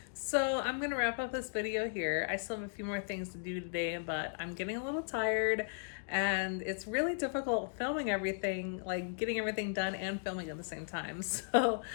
So I'm gonna wrap up this video here. I still have a few more things to do today, but I'm getting a little tired and it's really difficult filming everything, like getting everything done and filming at the same time. So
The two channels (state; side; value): silent; right; digital silence